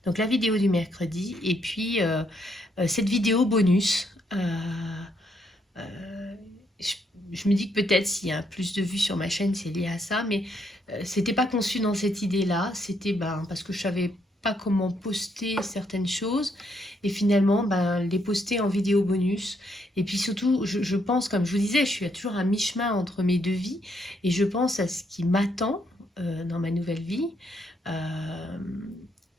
Donc, la vidéo du mercredi, et puis cette vidéo bonus. Je me dis que peut-être s'il y a plus de vues sur ma chaîne, c'est lié à ça, mais c'était pas conçu dans cette idée-là. C'était parce que je savais pas comment poster certaines choses et finalement les poster en vidéo bonus. Et puis surtout, je pense, comme je vous disais, je suis toujours à mi-chemin entre mes deux vies et je pense à ce qui m'attend dans ma nouvelle vie.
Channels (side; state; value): both; normal; correlation 0.74